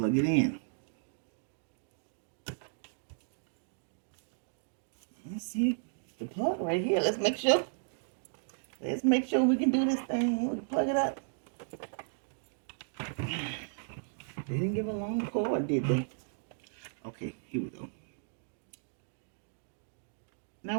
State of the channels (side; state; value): left; silent; digital silence